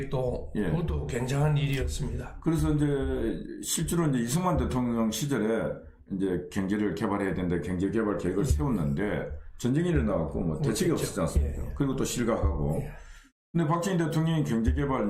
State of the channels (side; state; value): both; identical; correlation 1.00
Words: 그것도 굉장한 일이었습니다. 그래서 이제 실제로 이제 이승만 대통령 시절에 이제 경제를 개발해야 된다, 경제개발 계획을 세웠는데 전쟁이 일어나갖고 대책이 없었지 않습니까? 그리고 또 실각하고. 근데 박정희 대통령이 경제개발